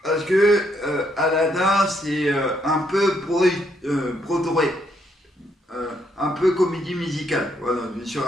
parce que Aladdin c'est un peu Broadway, un peu comédie musicale. Voilà, je me suis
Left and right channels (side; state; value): both; normal; correlation 0.74